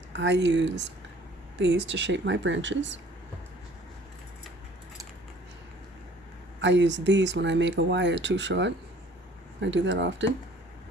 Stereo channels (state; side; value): normal; both; correlation 0.53